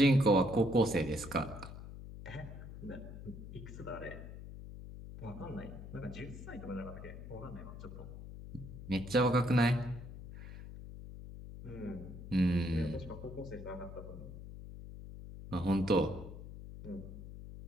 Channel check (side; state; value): left; noise; hum, 12 dB below the sound